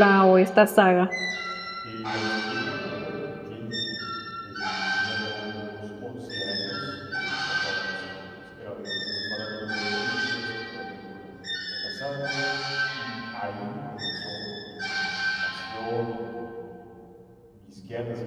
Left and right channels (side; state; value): both; identical; correlation 1.00